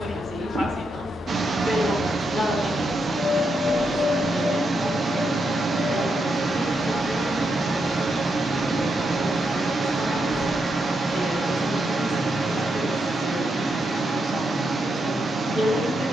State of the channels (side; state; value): both; normal; correlation 0.82